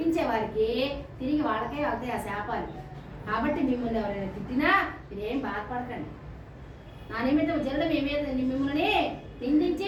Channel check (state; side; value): identical; both; correlation 1.00